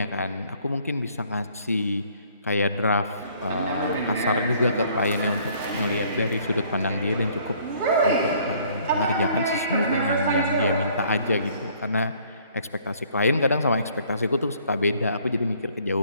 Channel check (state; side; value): inverted; both; correlation -0.60